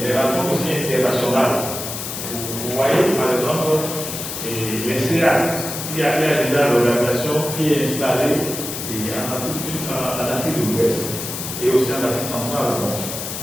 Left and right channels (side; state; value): left; noise; hiss, 6 dB below the sound